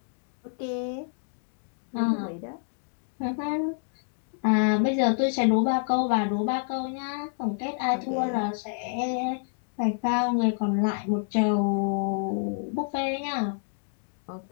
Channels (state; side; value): silent; right; digital silence